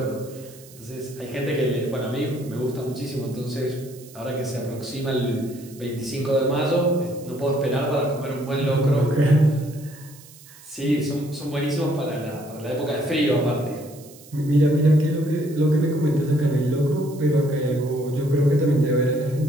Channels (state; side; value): noise; right; hiss, 21 dB below the sound